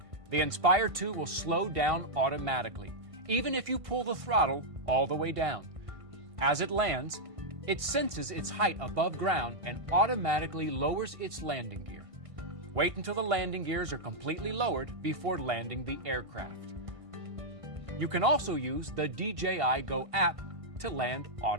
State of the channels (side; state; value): left; late; 1.5 ms